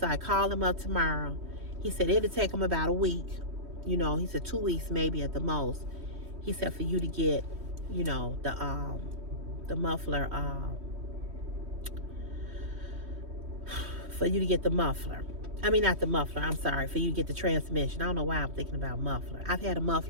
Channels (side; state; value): left; late; 3.1 ms